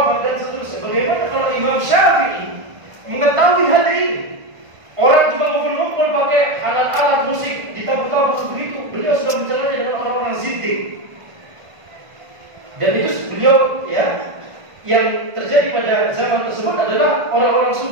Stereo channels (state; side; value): late; left; 1.5 ms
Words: dan seterusnya. Bagaimana kalau Imam Syafi'i mengetahui hal ini? Orang cuma ngumpul-ngumpul pakai alat-alat musik, ditabur-tabur begitu. Beliau sudah mencelanya dengan orang-orang zindik. Dan itu beliau, ya, yang terjadi pada zaman tersebut adalah orang-orang